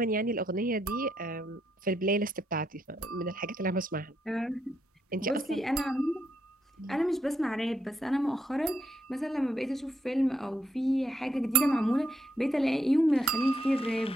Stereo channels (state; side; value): normal; both; correlation 0.77